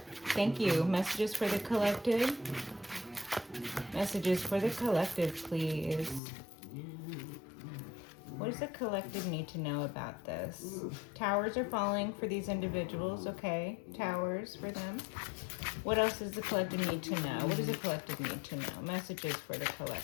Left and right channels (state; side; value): drops out; right; at 6.2 s